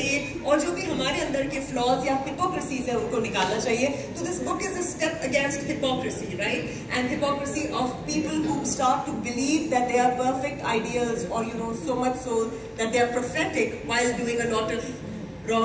اور جو بھی ہمارے اندر کے فلاز یا ہپوکریسیز ہیں ان کو نکالنا چاہیے. تو this book is a step against hypocrisy, right, and hypocrisy of people who start to believe that they are perfect ideals, or so much so that they are prophetic while doing a lot of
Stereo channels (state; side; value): identical; both; correlation 1.00